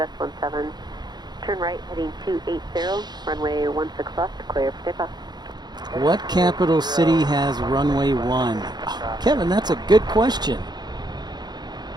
17. Turn right, heading 280, runway 16 left, clear for takeoff. What capital city has runway 1? Oh, Kevin, that's a good question.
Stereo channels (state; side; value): late; left; 0.20 ms